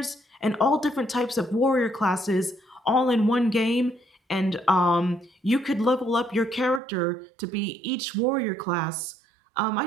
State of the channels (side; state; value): left; drops out; at 6.8 s